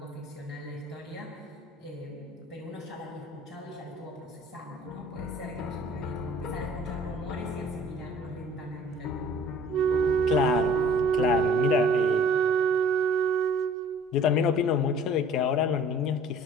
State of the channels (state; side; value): normal; both; correlation 0.51